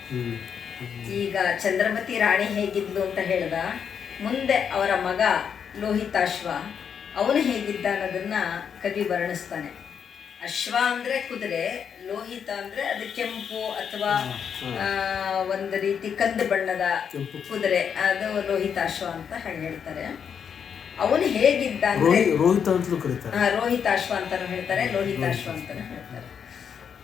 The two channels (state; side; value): quieter; right; 7.4 dB